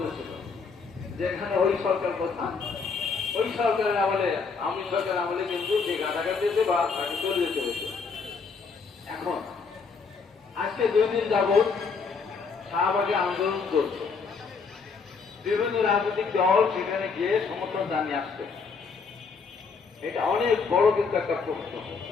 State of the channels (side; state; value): right; quieter; 5.1 dB